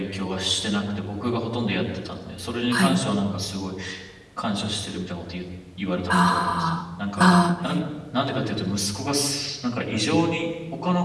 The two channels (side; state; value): both; identical; correlation 1.00